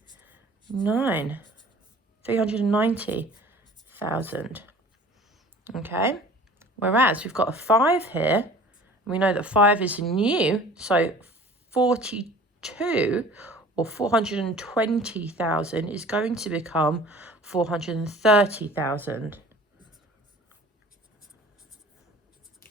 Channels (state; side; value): normal; both; correlation 0.46